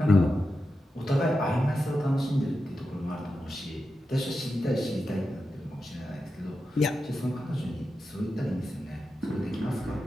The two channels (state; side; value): normal; both; correlation 0.90